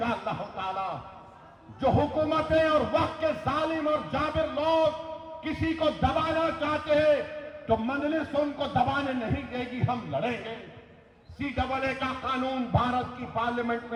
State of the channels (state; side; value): identical; both; correlation 1.00